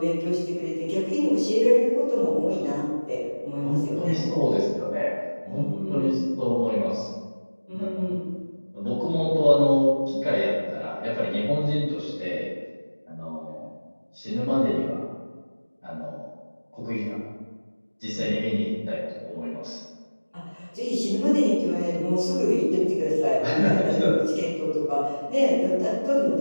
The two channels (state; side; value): inverted; both; correlation -1.00